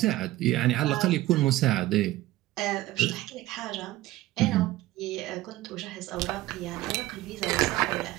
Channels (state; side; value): quieter; left; 16.7 dB